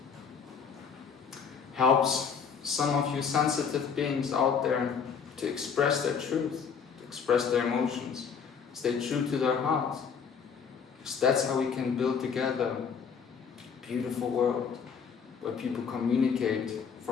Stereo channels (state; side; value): quieter; right; 6.4 dB